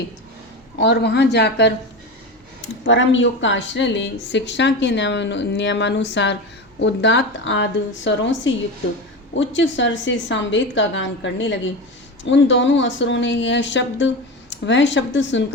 और वहाँ जाकर परम योग का आश्रय ले शिक्षा के नियमानुसार उदात्त आदि स्वरों से युक्त उच्च स्वर से सामवेद का गान करने लगे। उन दोनों असुरों ने वह शब्द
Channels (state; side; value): normal; both; correlation 0.23